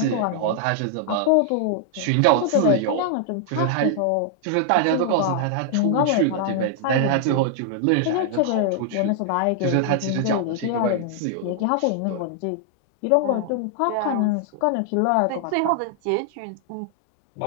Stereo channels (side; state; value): both; different; correlation -0.01